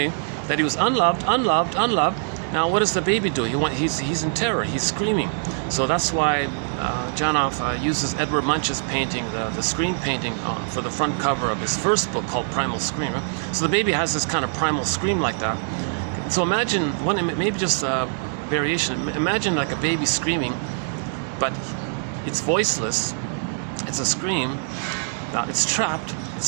that he was unloved, unloved, unloved. Now what does the baby do? He's in terror, he's screaming. So that's why Janov uses Edward Munch's painting, the scream painting, for the front cover of his first book called Primal Scream. Right? So the baby has this kind of primal scream like that. So imagine, maybe just a variation, imagine like a baby screaming, but it's voiceless, it's a scream, now it's trapped,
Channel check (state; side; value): silent; left; digital silence